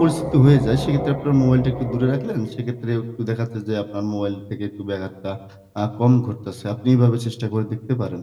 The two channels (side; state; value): both; identical; correlation 1.00